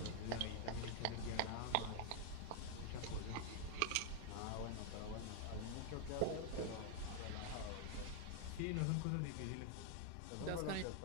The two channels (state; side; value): different; both; correlation 0.00